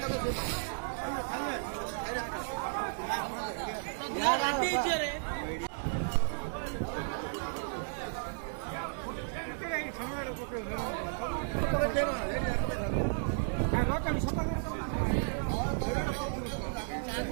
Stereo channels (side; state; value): left; silent; digital silence